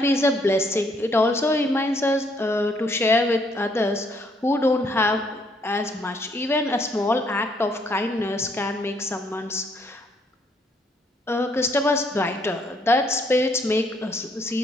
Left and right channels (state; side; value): normal; both; correlation 0.69